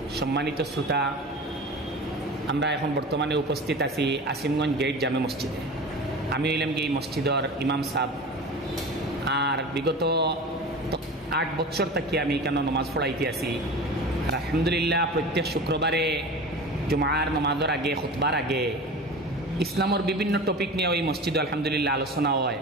সম্মানিত শ্রোতা, আমরা এখন বর্তমানে উপস্থিত আছি আসিমগঞ্জ গেট জামে মসজিদে। আমি হইলাম কি এই মসজিদর ইমাম সাহেব, আর বিগত 8 বছর থেকে আমি এখানে নমাজ পড়াইতে আছি। আর আলহামদুলিল্লাহ প্রত্যেক শুক্রবারে জুমার নমাজের আগে, খুতবার আগে ইসলামের বিভিন্ন টপিক নিয়ে ওই মসজিদে আলহামদুলিল্লাহ আলোচনা হয়,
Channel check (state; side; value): normal; both; correlation 0.33